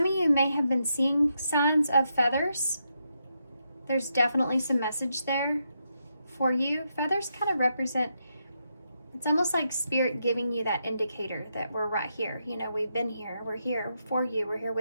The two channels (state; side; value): inverted; both; correlation -0.82